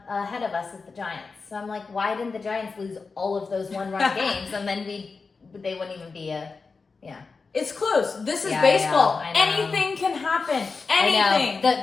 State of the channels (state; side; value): quieter; right; 4.5 dB